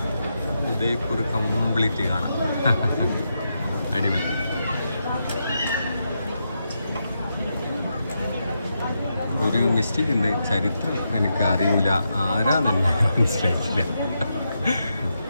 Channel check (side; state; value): both; inverted; correlation -0.84